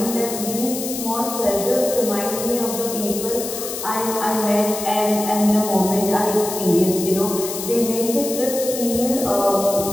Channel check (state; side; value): noise; left; hiss, 7 dB below the sound